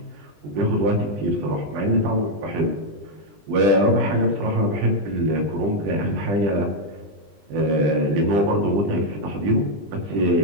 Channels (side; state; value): left; late; 20 ms